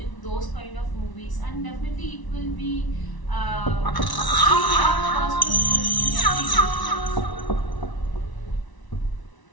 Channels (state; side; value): late; right; 1.0 ms